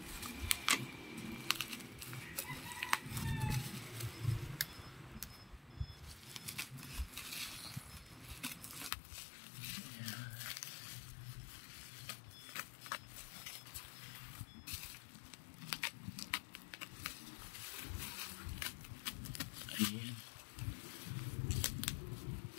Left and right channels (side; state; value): right; drops out; at 8.9 s